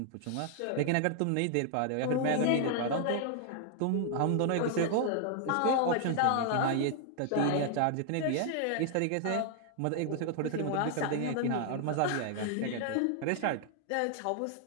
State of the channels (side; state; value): both; different; correlation 0.00